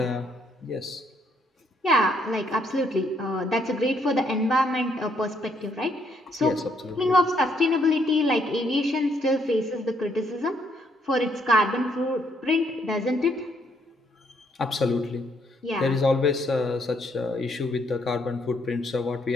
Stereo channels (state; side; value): normal; both; correlation 0.71